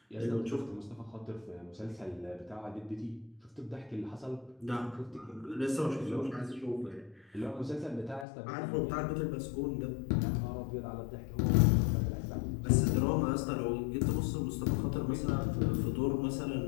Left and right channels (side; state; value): right; drops out; at 8.2 s